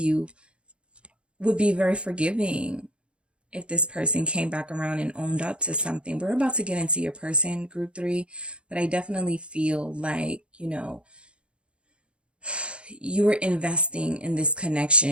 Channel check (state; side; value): late; left; 0.057 ms